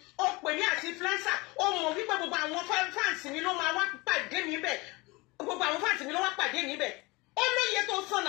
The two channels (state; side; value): quieter; right; 24.0 dB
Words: ó pè mí àti influencer ó mọ̀ wípé gbogbo àwọn fans mi ló máa wá pàdé mi bẹ̀ gbogbo àwọn fans mi ló wá pàdé mi bẹ̀ ó lóye tó